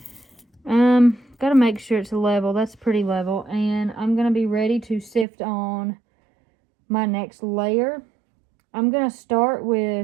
Gotta make sure it's level. That's pretty level. And I'm gonna be ready to sift on my next layer. I'm gonna start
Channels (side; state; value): left; drops out; at 5.2 s